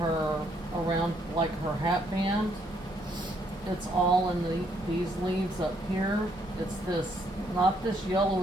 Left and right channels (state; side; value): normal; both; correlation 0.71